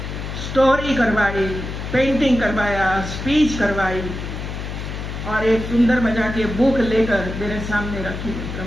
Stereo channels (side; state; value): left; noise; hum, 7 dB below the sound